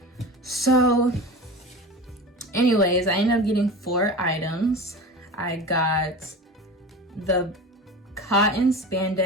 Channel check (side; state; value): both; normal; correlation 0.31